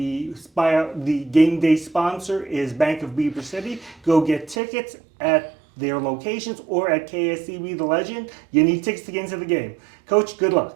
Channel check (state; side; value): drops out; left; at 4.5 s